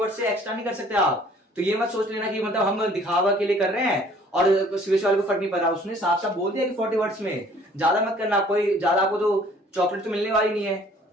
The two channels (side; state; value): both; normal; correlation 0.56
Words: से एक्स्ट्रा नहीं कर सकते आप। तो ये मत सोच लेना कि मतलब हम दिखावा के लिए कर रहे हैं और सीबीएसई वाले को फर्क नहीं पड़ रहा। उसने साफ साफ बोल दिया कि 40 वर्ड्स में, ज्यादा मत करना, कोई ज्यादा आपको तो चॉकलेट तो मिलने वाली नहीं है,